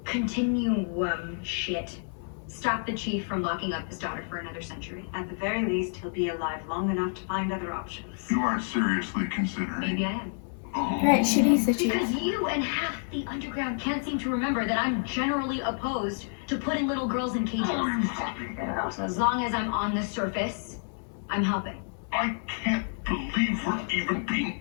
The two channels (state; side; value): silent; right; 59 dB below the other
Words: continuum shit stop the chief from locking up his daughter for another century? At the very least, he'll be alive long enough to find other options. You aren't seriously considering. Maybe I am. Oh. Right, she needs the chief. Because you and half the underground can't seem to remember that I'm generally opposed to putting little girls in cages. Oh, you fucking are. So as long as I'm on the surface, I'm helping. I can't believe we're even being